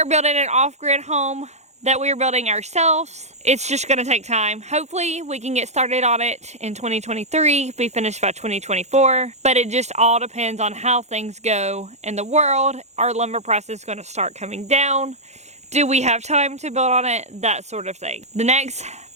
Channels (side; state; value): left; late; 0.33 ms